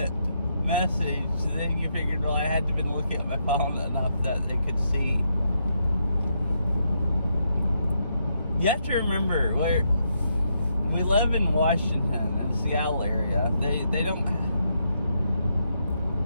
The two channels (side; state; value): both; inverted; correlation -0.79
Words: message, so then you figured, well, I had to have been looking at my phone enough that they could see. You have to remember, we live in Washington, in the Seattle area. They don't...